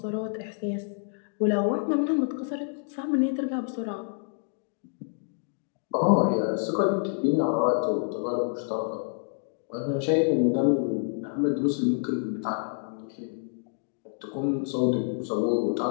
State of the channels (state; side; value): silent; right; digital silence